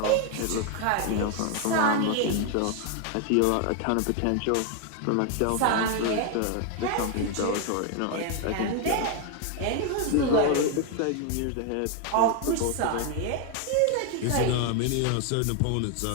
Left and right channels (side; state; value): both; different; correlation 0.00